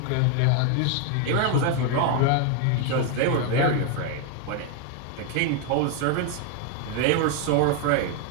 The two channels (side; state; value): both; different; correlation 0.01